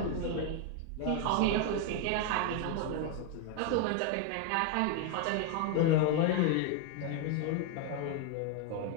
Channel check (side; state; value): both; different; correlation 0.00